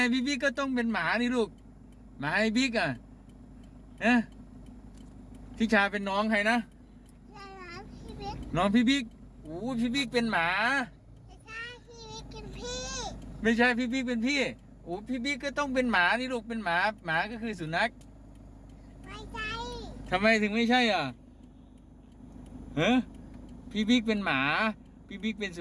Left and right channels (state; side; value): identical; both; correlation 1.00